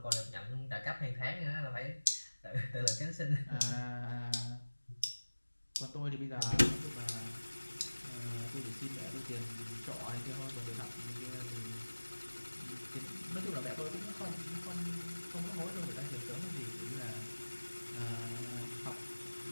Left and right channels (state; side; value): inverted; both; correlation -1.00